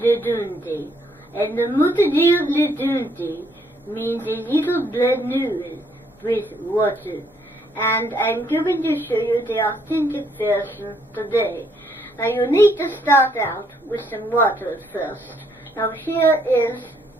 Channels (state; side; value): normal; both; correlation 0.70